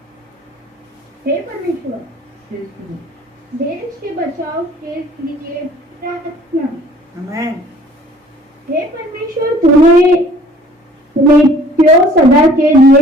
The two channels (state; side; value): normal; both; correlation 0.53